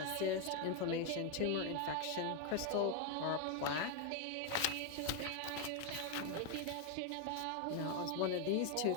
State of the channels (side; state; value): both; different; correlation 0.01